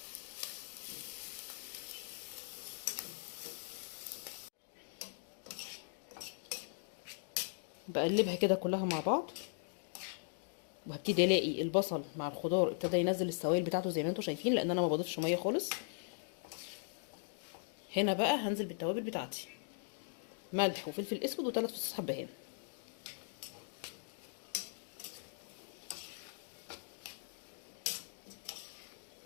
بقلبها كده كلها مع بعض، وهبتدي الاقي البصل مع الخضار ابتدى ينزل السوائل بتاعته زي ما انتم شايفين، لان انا ما بضيفش ميه خالص. هنا بقى هنزل بالتوابل بتاعتي، ملح وفلفل اسود و3 فصوص حبهان.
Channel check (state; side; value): silent; right; digital silence